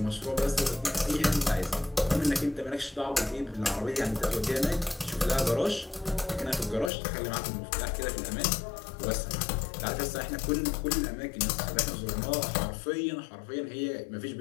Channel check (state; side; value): drops out; right; at 6.9 s